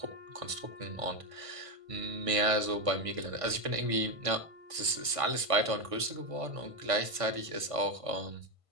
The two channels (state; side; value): late; left; 1.5 ms